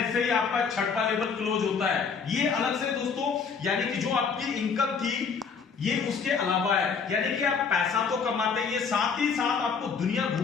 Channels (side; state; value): right; quieter; 5.7 dB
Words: ही आपका छठवां लेवल क्लोज होता है, ये अलग से दोस्तों, यानी कि जो आपकी इनकम थी ये उसके अलावा है, यानी कि आप पैसा तो कमाते हैं, ये साथ ही साथ आपको दुनिया